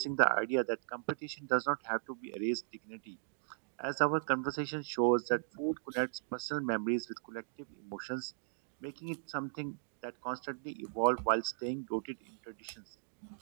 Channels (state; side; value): silent; left; digital silence